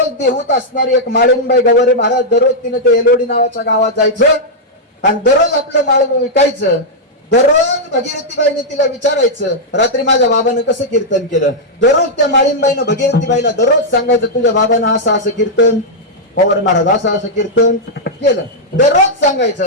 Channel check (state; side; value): normal; both; correlation -0.05